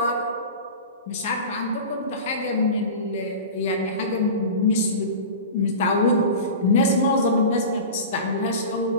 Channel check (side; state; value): both; inverted; correlation -0.32